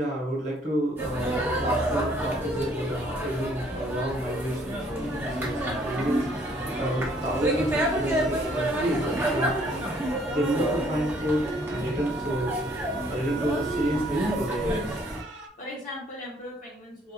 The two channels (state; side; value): normal; both; correlation 0.63